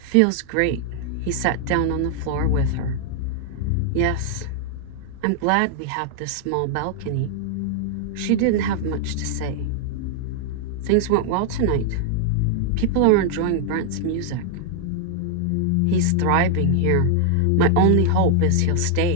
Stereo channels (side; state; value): both; different; correlation -0.01